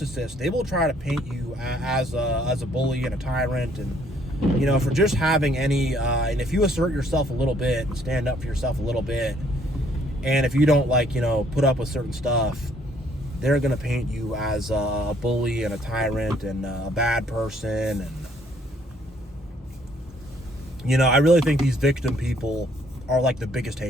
they will try to paint you as a bully and a tyrant, and for just having any. And if you assert yourself a little bit and stand up for yourself a little bit, and if you don't, like, put up with certain stuff, they're gonna paint you as a bully and a tyrant and a bad person. And I really think these victim people are, like, the biggest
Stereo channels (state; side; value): normal; both; correlation 0.65